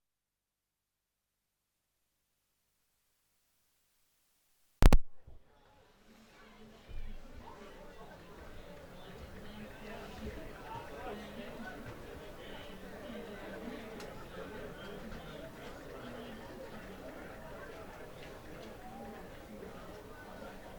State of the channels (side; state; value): both; identical; correlation 1.00